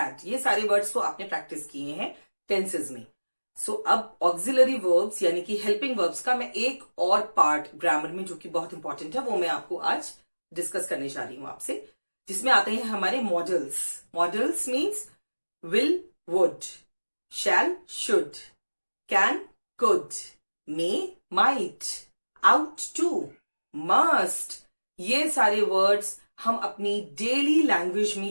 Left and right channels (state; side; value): inverted; both; correlation -1.00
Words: ये सारे words तो आपने प्रैक्टिस किए हैं टेंसेज में। सो अब ऑक्सिलरी वर्ब्स यानी कि हेल्पिंग वर्ब्स का मैं एक और पार्ट ग्रामर में जो कि बहुत इंपॉर्टेंट है वो मैं आपको आज डिस्कस करने जा रही हूं आपसे, जिसमें आते हैं हमारे modals. Modals means will, would, shall, should, can, could, may, might, ought to, must, ये सारे वर्ड्स हम अपनी डेली लैंग्वेज